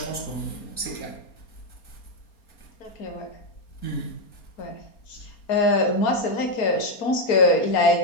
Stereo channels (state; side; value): late; right; 4.3 ms